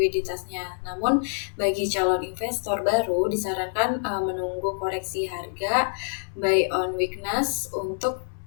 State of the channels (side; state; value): right; silent; 61 dB below the other